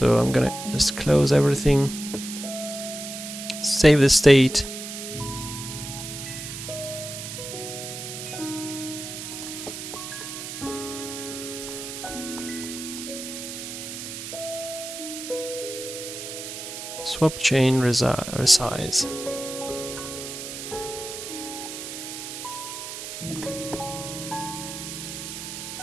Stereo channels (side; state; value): right; noise; hiss, 8 dB below the sound